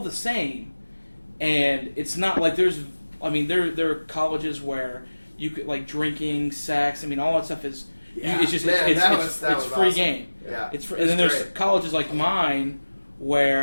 the same. And it's not like there are colleges where you could like drinking, sex. I mean, all that stuff is it's just it's free awesome. Game. Yeah, and then there's colleges like mine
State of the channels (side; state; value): both; inverted; correlation -1.00